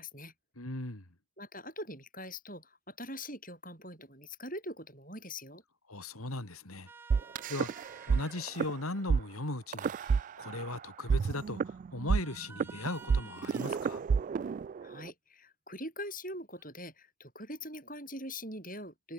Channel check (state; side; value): quieter; left; 3.4 dB